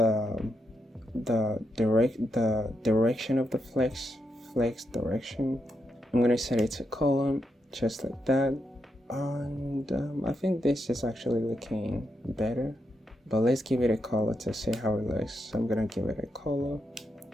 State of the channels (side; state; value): both; normal; correlation 0.83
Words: direction of the flex direction. I'm gonna set it to column, just like that. And I think this is actually looking better, but let's give it a color to see how it looks. So I'm gonna give it a color.